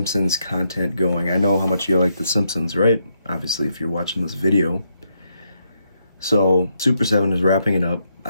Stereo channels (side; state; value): both; inverted; correlation -0.79